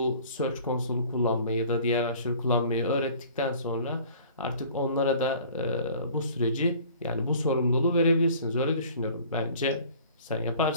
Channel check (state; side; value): inverted; both; correlation -0.49